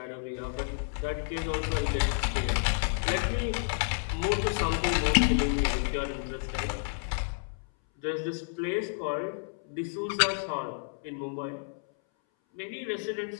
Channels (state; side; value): silent; right; 58 dB below the other